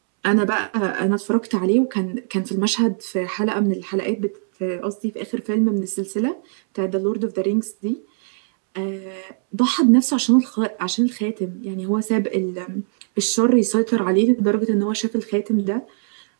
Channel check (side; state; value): left; silent; 65 dB below the other